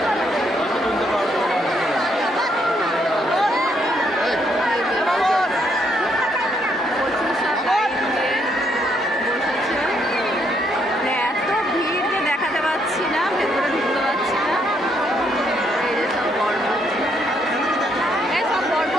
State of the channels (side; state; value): both; normal; correlation 0.73